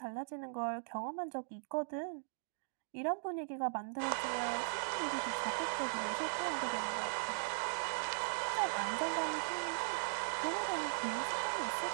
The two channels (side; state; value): left; silent; digital silence